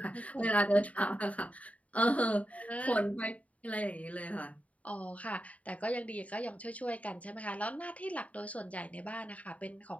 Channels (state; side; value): late; right; 0.068 ms